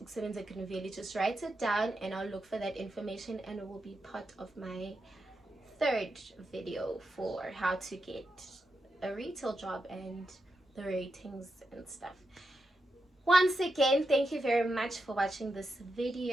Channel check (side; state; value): both; normal; correlation 0.86